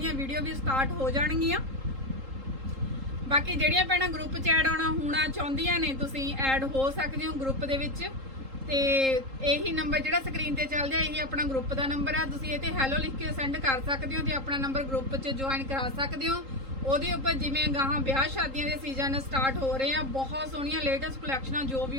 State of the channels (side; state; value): left; late; 3.8 ms